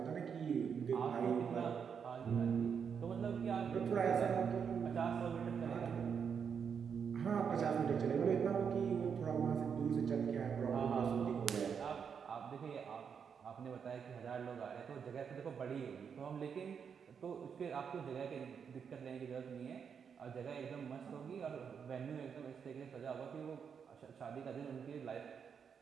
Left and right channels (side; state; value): left; quieter; 6.9 dB